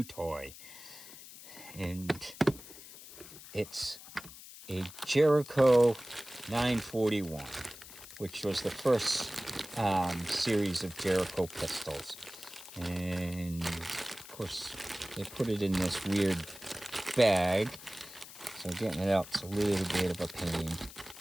toy, and it's a Jericho 941, which was the first series of Jericho pistols. And, of course, they put it in this weird bag, so getting it out's a little bit of a pain.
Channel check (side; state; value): left; noise; hiss, 16 dB below the sound